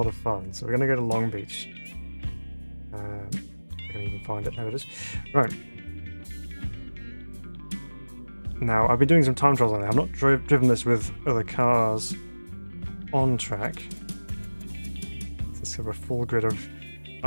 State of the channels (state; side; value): inverted; both; correlation -1.00